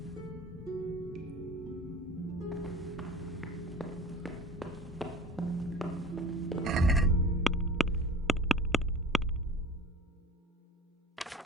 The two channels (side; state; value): both; normal; correlation 0.41